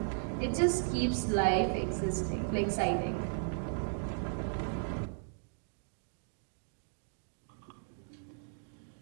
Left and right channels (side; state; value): left; silent; digital silence